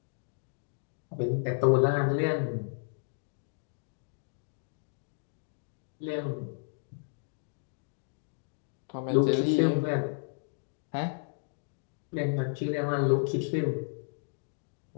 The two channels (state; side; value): silent; right; digital silence